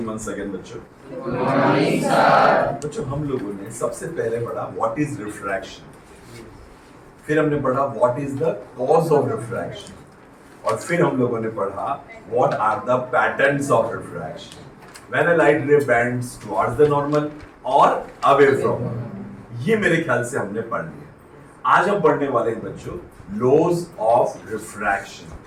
once again बच्चों। Good morning sir. बच्चों हम लोगों ने सबसे पहले पढ़ा व्हाट इज रिफ्रैक्शन, फिर हमने पढ़ा what is the cause of refraction, और फिर हम लोगों ने पढ़ा what are the patterns of refraction when a light ray bends towards the normal और अवे फ्रॉम। ये मेरे ख्याल से हमने पढ़ लिया। आज हम पढ़ने वाले हैं बच्चों लॉज ऑफ रिफ्रैक्शन।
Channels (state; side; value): identical; both; correlation 1.00